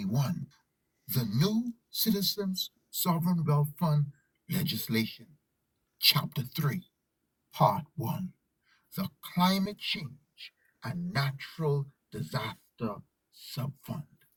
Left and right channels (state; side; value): identical; both; correlation 1.00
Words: the new Citizens Sovereign Wealth Fund legislation, Chapter 3, Part 1, the Climate Change and Natural Disaster Subfund.